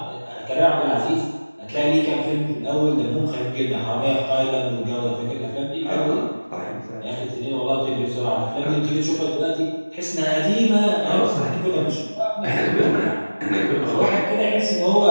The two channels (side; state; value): both; inverted; correlation -1.00